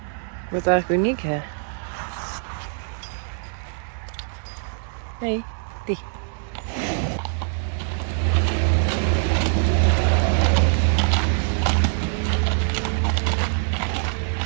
Wat eigenlijk uniek, hè? Nee, die.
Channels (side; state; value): left; silent; 59 dB below the other